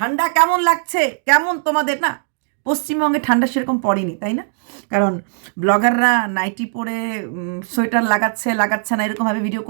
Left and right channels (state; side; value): silent; left; digital silence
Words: কেমন লাগছে? কেমন তোমাদের? না, পশ্চিমবঙ্গে ঠান্ডা সেরকম পড়েনি, তাই না? কারণ ব্লগাররা নাইটি পরে সোয়েটার লাগাচ্ছে না এরকমভাবে ভিডিও